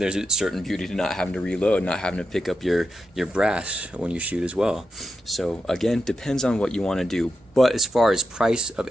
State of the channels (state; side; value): normal; both; correlation 0.88